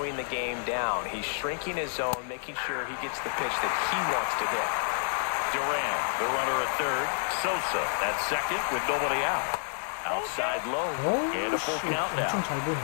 the game down. He's shrinking his zone, making sure he gets the pitch that he wants to hit. Duran, the runner at third. Sosa at second with nobody out. Outside low and a 어우, full 씨, count now. 엄청 잘 보네.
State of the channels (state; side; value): silent; right; digital silence